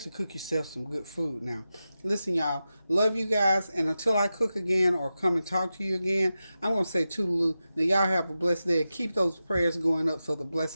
cook yourself some good food now. Listen, y'all, love you guys, and until I cook again or come and talk to you again, I'm going to say toodaloo. Now, y'all have a blessed day, and keep those prayers going up so the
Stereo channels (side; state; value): both; inverted; correlation -0.92